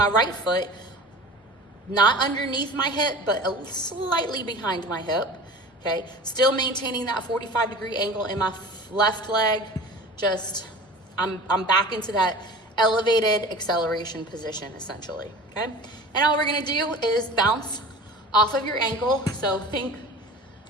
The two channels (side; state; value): both; normal; correlation 0.39